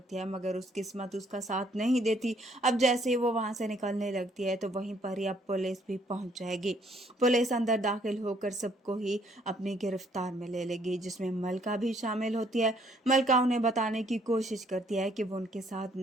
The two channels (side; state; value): both; normal; correlation 0.65